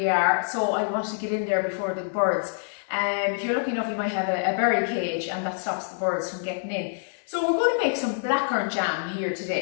are, so I wanted to get in there before the birds. If you're lucky enough, you might have a berry cage, and that stops the birds from getting in. So we're going to make some blackcurrant jam here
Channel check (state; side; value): silent; right; 61 dB below the other